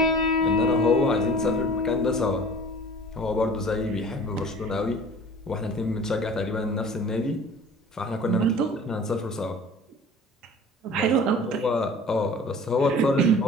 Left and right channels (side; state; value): both; normal; correlation 0.44